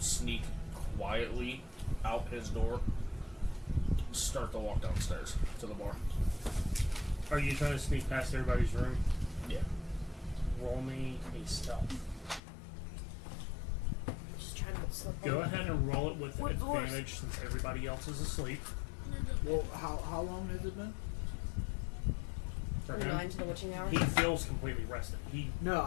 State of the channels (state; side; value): drops out; right; at 12.4 s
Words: quietly out his door, start to walk downstairs to the bar. Are you trying to sneak past everybody's room? Yeah. Roll me a stealth. Just trying to slip Go on. ahead and roll it with What doors? advantage since everybody else is asleep. Well, how long has it been? For From him, 9 to the witching hour. he feels completely rested. No,